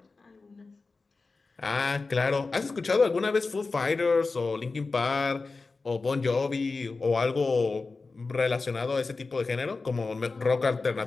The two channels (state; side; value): quieter; right; 3.9 dB